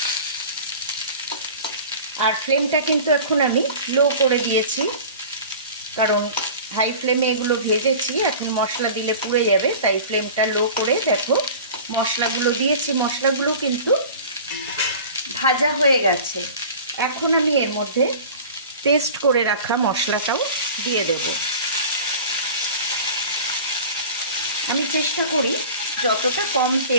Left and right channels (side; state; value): both; inverted; correlation -0.39